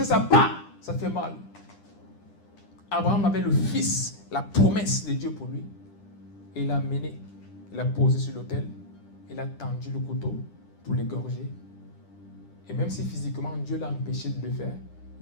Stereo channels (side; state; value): right; late; 9.9 ms